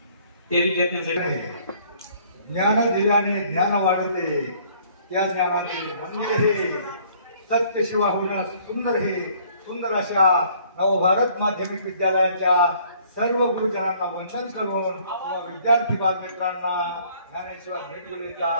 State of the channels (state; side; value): inverted; both; correlation -0.59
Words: त्या विद्यार्थ्यांसाठी ज्ञान दिल्याने ज्ञान वाढते, त्या ज्ञानाने म्हणजे हे सत्य शिवा होणं सुंदर, हे सुंदर अशा नवभारत माध्यमिक विद्यालयाच्या सर्व गुरुजनांना वंदन करून विद्यार्थी बालमित्रांना ज्ञानेश्वर मिडगुलेचा